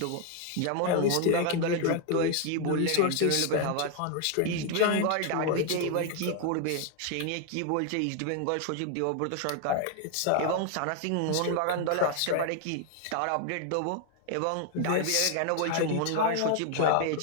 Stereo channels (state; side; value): different; both; correlation 0.00